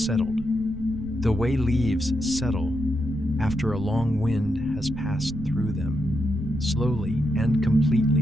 the way leaves settle after a long wind has passed through them, slowly and completely,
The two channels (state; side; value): noise; right; rumble, 13 dB below the sound